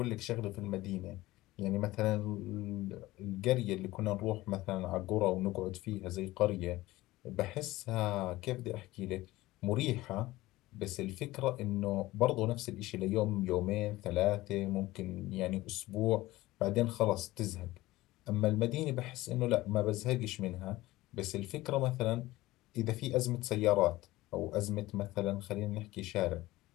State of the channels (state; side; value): quieter; right; 18.1 dB